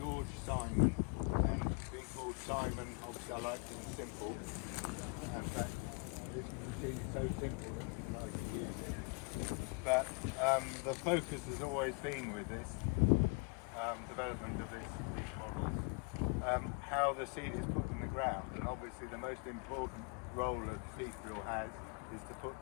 Simon, and being called Simon, obviously I like things simple, and that this machine is so simple that it's nice to use it. But the focus has always been with this development of these models, how the seed is put in the ground, and obviously the most important role that seed drill has is to put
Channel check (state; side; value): quieter; right; 31.9 dB